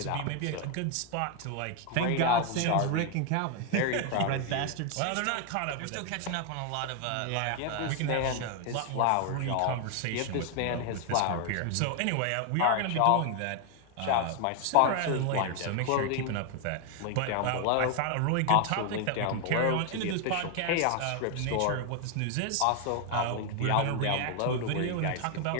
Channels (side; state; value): both; different; correlation 0.00